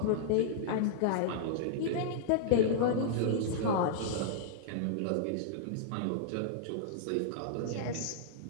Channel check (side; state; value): both; different; correlation -0.02